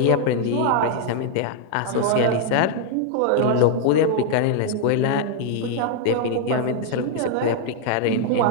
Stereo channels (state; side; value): different; both; correlation 0.00